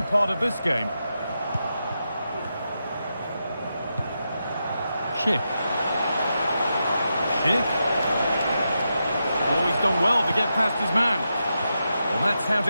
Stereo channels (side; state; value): both; inverted; correlation -0.87